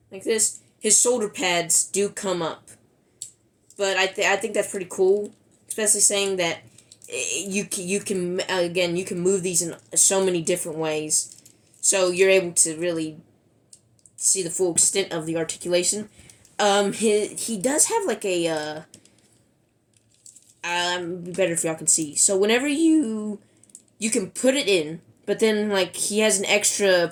like this. His shoulder pads do come up. But I think that's pretty cool, especially saying that you can move these in so many different ways, so you're able to really see the full extent of the articulation. he does have like a be better if y'all can see. So whenever you can put it in, but then like he has an extra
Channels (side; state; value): both; identical; correlation 1.00